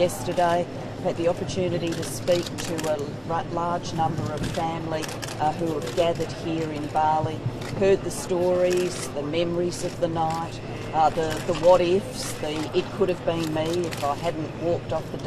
I've had the opportunity to speak to a large number of family who have gathered here in Bali, heard the stories, the memories of the night, the what-ifs, it could have been me if I hadn't walked off the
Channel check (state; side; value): identical; both; correlation 1.00